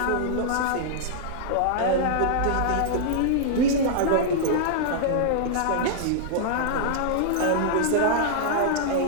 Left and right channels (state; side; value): different; both; correlation -0.02